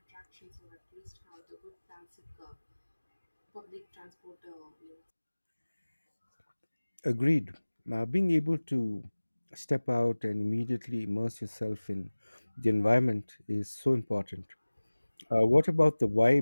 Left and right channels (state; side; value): inverted; both; correlation -1.00